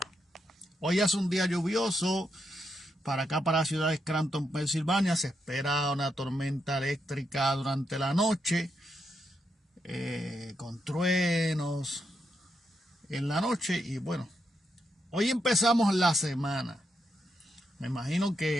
Hoy es un día lluvioso para acá, para la ciudad de Scranton, Pensilvania. Se espera una tormenta eléctrica durante la noche, con truenos en la noche. Y bueno, hoy empezamos la semana. Me imagino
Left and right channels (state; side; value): normal; both; correlation 0.82